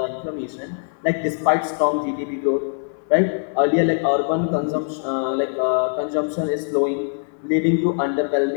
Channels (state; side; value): silent; right; 64 dB below the other